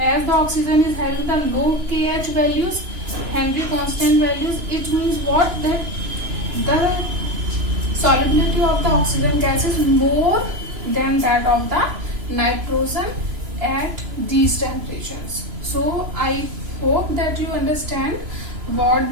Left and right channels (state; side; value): late; left; 2.9 ms